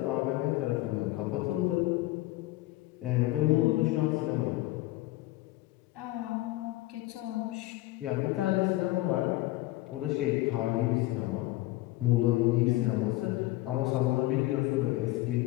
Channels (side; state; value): right; quieter; 18.1 dB